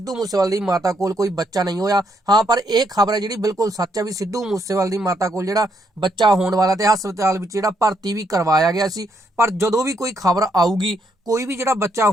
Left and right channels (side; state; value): both; normal; correlation 0.75